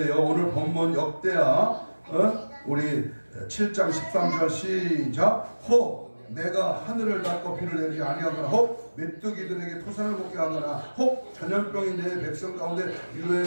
오늘 본문 역대하 우리 7장 13절 시작. 혹 내가 하늘을 닫고 비를 내리지 아니하거나 혹 메뚜기들에게 토산을 먹게 하거나 혹 전염병이 내 백성 가운데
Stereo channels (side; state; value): both; inverted; correlation -1.00